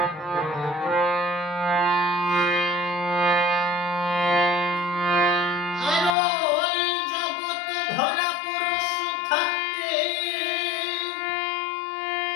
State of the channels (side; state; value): right; drops out; at 6.2 s